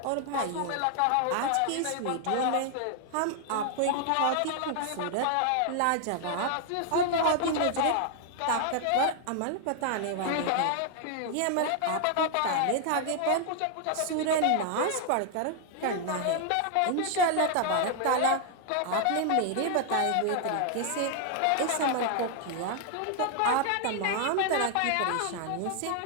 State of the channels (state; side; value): different; both; correlation 0.00